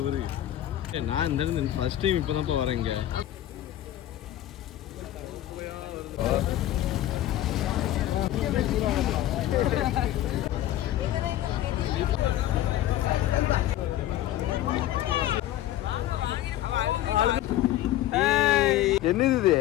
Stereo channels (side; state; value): right; quieter; 13.4 dB